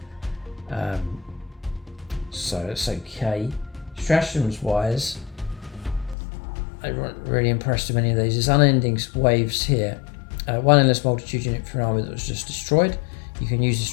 So it's okay. Stratagems wise, I wasn't really impressed with any of these. There's Unending Waves here. One endless multitude unit for an army that was just destroyed. You can use the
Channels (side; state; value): right; drops out; at 6.2 s